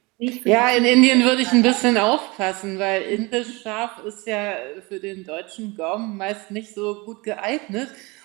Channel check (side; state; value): left; quieter; 25.5 dB